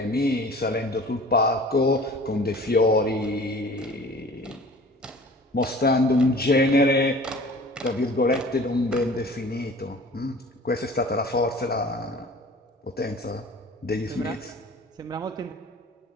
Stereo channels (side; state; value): both; normal; correlation 0.45